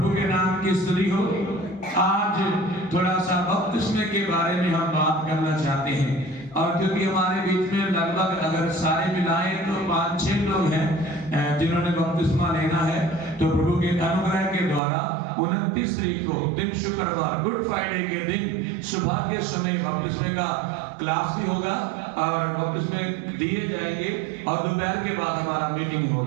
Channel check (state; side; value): drops out; left; at 14.8 s